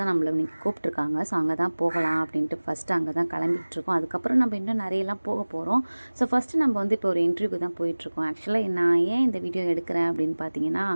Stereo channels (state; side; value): inverted; both; correlation -1.00